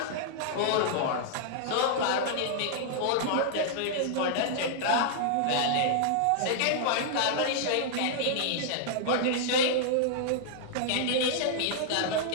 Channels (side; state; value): both; different; correlation -0.01